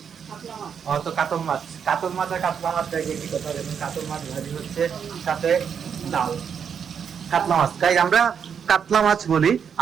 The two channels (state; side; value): quieter; left; 7.3 dB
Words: তো কাতল মাছ আর কাতলা মাছ দেখে কি কথা বলবেন। কাতল মাছ ভাজি হচ্ছে, সাথে ডাল। কাতলা মাছ, তাই আমরা কাতলা মাছ বলি।